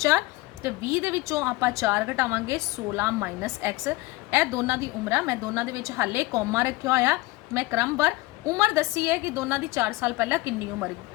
तो 20 के विचों आपां 4 घटावांगे 16 माइनस एक्स। यह दोनों की उम्र मैं दोनों के विच हाले कॉमा रखा होया मैं क्रमवार उम्र दसी है कि दोनों की 4 साल पहला कितनी उम्र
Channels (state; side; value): quieter; right; 21.0 dB